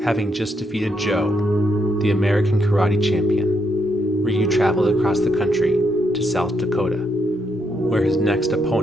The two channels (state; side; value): normal; both; correlation 0.78